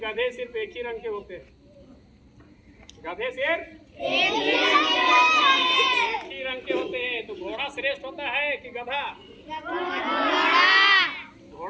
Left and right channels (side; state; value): both; identical; correlation 1.00